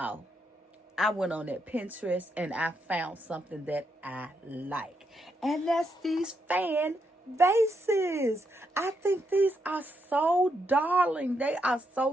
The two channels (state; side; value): normal; both; correlation 0.80